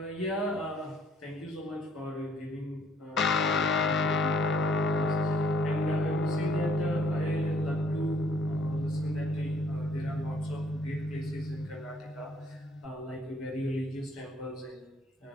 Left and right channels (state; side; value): normal; both; correlation 0.62